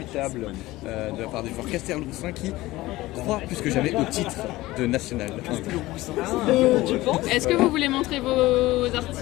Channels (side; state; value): right; quieter; 18.2 dB